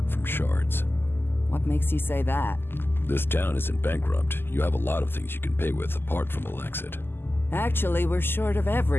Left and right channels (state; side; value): late; right; 0.10 ms